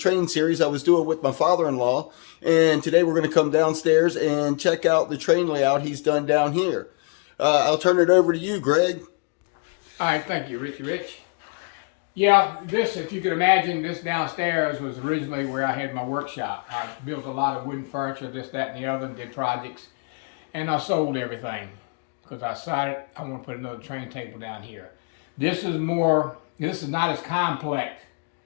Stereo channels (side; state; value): right; quieter; 36.0 dB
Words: series I was doing with my father-in-law. And today we're going to come downstairs and check out the train layout he's done down here. I'll turn it over to you, Greg. All right, thank you, Richie Rich. Yeah, this, if you could imagine, this downstairs was originally where I had my workshop. I built a lot of wooden furniture, this, that, and the other, did projects, and I sold everything because I decided I want to put another train table down here. This is not as complex.